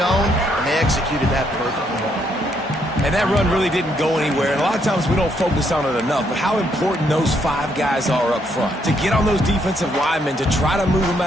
and they executed that perfectly. And that run really didn't go anywhere. And a lot of times we don't focus on it enough, but how important those 5 guys are up front. To get on those defensive linemen, to try to move them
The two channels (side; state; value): both; normal; correlation 0.73